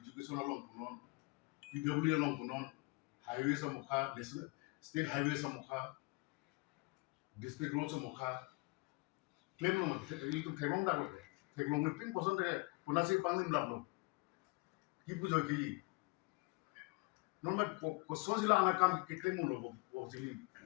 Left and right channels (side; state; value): right; quieter; 26.7 dB